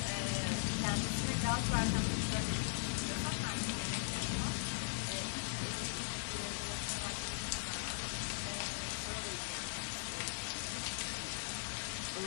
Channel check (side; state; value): right; silent; digital silence